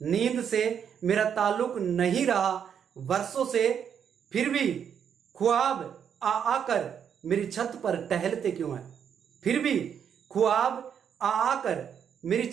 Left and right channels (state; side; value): quieter; left; 8.1 dB